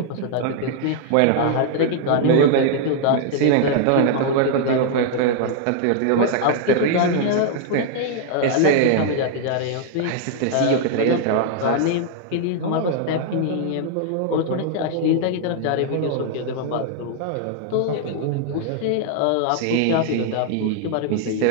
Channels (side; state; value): both; different; correlation 0.00